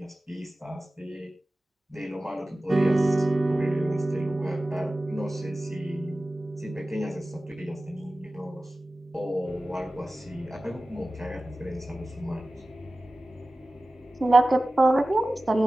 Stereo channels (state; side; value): normal; both; correlation 0.96